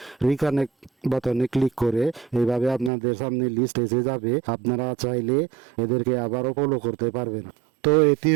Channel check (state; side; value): drops out; left; at 2.9 s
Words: রিকানেক্ট বাটনে ক্লিক করে এইভাবে আপনাদের সামনে লিস্ট এসে যাবে। আপনারা চাইলে এদেরকে আবারও ফলো করতে পারবেন। তো এটি